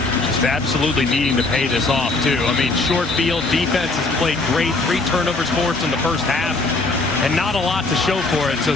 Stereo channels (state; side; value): quieter; right; 3.4 dB